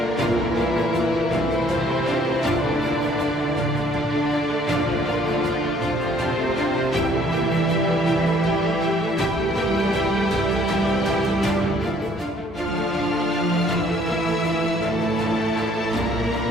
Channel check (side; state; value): both; normal; correlation 0.62